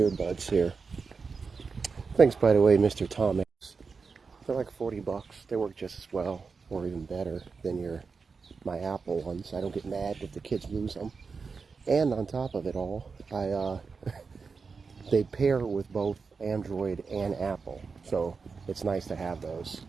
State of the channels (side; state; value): left; quieter; 4.9 dB